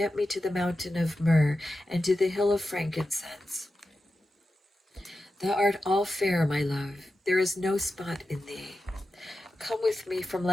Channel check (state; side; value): normal; both; correlation 0.92